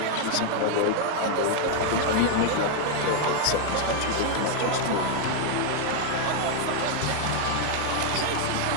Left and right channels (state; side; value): different; both; correlation 0.00